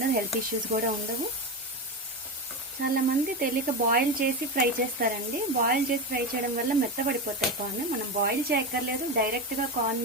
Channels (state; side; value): normal; both; correlation 0.17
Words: హెల్త్ ఇష్యూస్ కూడా ఉండవు. చాలామంది తెలియక బాయిల్ చేసి ఫ్రై చేస్తారండి. బాయిల్ చేసి ఫ్రై చేయడం వల్ల మెత్తబడిపోతాయి కార్న్. మనం బాయిల్ చేయక్కర్లేదు, డైరెక్ట్గా